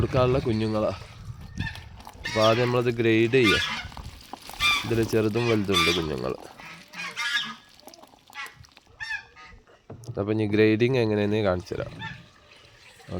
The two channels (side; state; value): both; identical; correlation 1.00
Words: കുഞ്ഞുങ്ങളാണ്. അപ്പോൾ ആദ്യം നമ്മളത് ഗ്രേഡ് ചെയ്യുക. ഇതിൽ ചെറുതും വലുതുണ്ട് കുഞ്ഞുങ്ങൾ. അപ്പം ഇനി ഗ്രേഡിങ് എങ്ങനെയെന്ന് കാണിച്ചു തരാം.